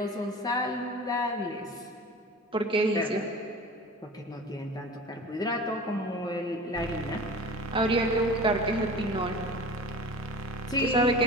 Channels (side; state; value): both; normal; correlation 0.38